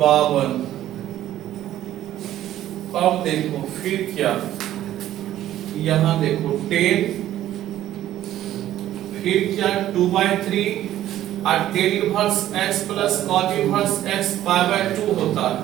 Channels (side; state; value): left; quieter; 12.9 dB